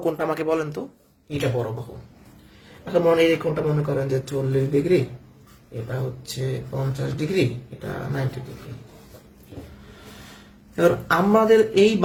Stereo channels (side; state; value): both; identical; correlation 1.00